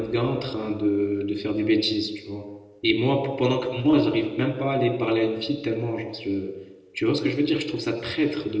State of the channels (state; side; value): identical; both; correlation 1.00